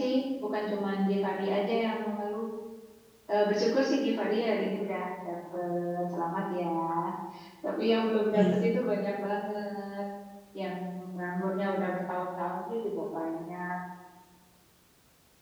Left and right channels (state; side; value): identical; both; correlation 1.00